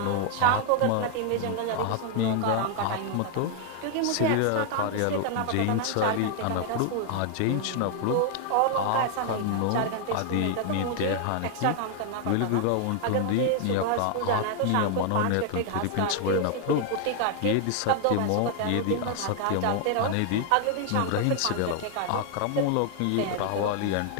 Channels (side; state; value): both; different; correlation 0.00